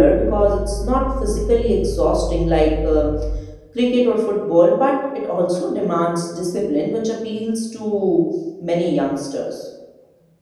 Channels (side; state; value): both; identical; correlation 1.00